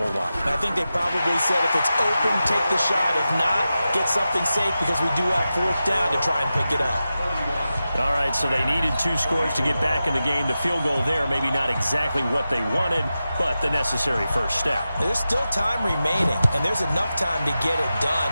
lot. I think they probably said if it's open, take the shot. If not, get something safe because we do have fourth down to try and pick it up. All right, so they needed 2 scores to get back in the game. The field goal there, maybe not exactly what they wanted, but the necessary first step. There's still time remaining, and there's enough time to get it done.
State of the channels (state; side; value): inverted; both; correlation -0.92